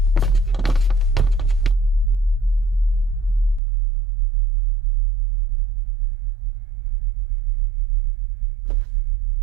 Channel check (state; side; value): drops out; left; at 3.6 s